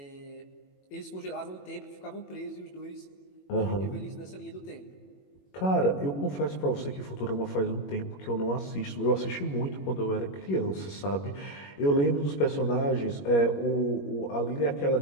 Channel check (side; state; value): right; late; 21 ms